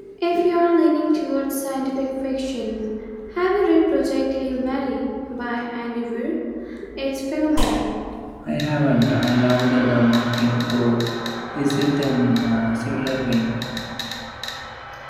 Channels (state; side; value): identical; both; correlation 1.00